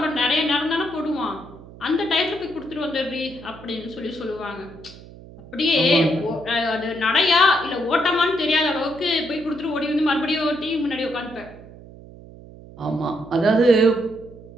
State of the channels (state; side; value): noise; right; hum, 18 dB below the sound